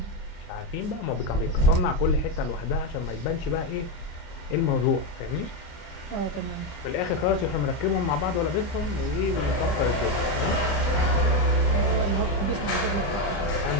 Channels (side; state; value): right; late; 30 ms